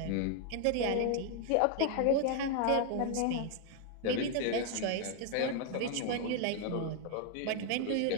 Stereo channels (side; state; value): both; different; correlation 0.00